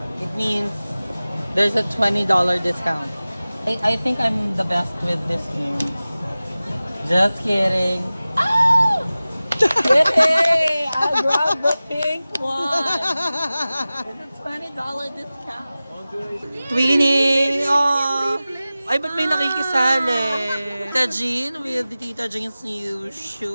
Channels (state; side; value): inverted; both; correlation -0.97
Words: it means there's a $20 discount. I think I'm the best with this game. Just kidding. Ah! Yay! I grabbed the pink one. It's a $20 discount. Twinning! Oh! Ay, ba't may nakikisali? Tita Jean with Tita Jean's new